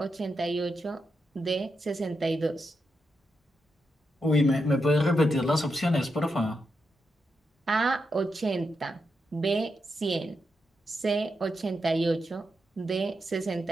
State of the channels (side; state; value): both; normal; correlation 0.85